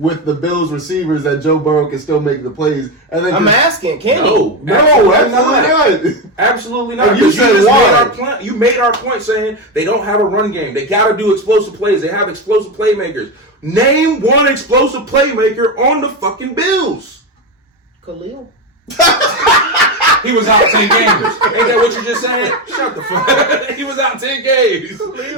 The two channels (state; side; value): normal; both; correlation 0.14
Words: the Bills receivers that Joe Burrow can still make the plays, and then I'm asking, can No, no, absolutely absolutely not. Absolutely not. And you said just why? you made our point saying they don't have a run game. They got to do explosive plays. They have explosive playmakers. Name one explosive playmaker on the fucking Bills. Khalil? He was out 10 games. Ain't that what you just said? Shut the fuck. He was out 10 games.